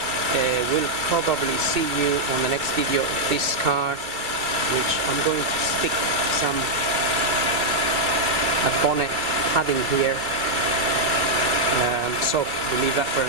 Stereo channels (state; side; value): late; left; 2.4 ms